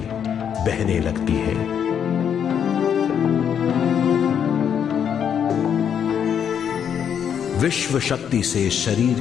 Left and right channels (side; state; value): right; quieter; 8.2 dB